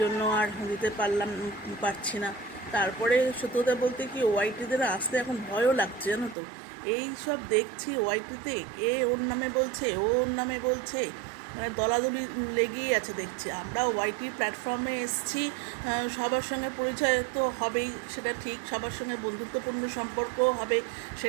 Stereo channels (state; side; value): drops out; left; at 6.4 s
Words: জন্য আর দিতে পারছি না। তারপরে সত্যি কথা বলতে কি, ওয়াইটিদের আসতে এখন ভয়ও লাগছে, জানো তো। এই সব দেখছি ওয়াইটিতে, এ ওর নামে বলছে, ও ওর নামে বলছে, মানে দলাদলি লেগেই আছে দেখছি। আমরা ওয়াইটি প্ল্যাটফর্মে এসছি, সবার সঙ্গে পরিচয় তো হবেই, সেটা ঠিক। সবার সঙ্গে বন্ধুত্বপূর্ণ সম্পর্কও হবে,